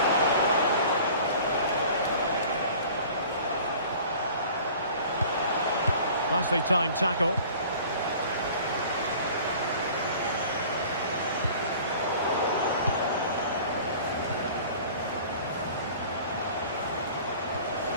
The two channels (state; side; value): inverted; both; correlation -0.45